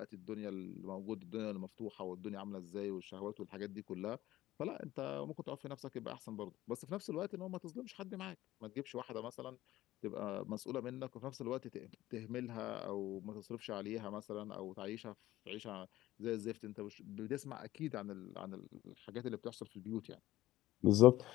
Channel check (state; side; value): quieter; right; 15.5 dB